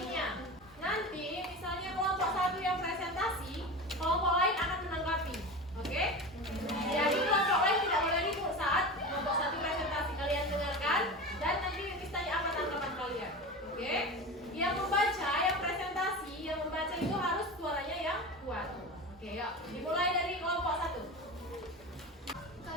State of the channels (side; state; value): both; normal; correlation 0.28